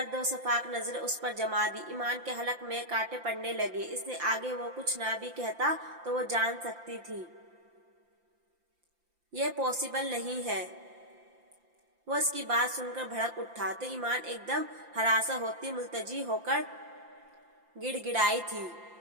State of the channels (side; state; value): left; late; 5.8 ms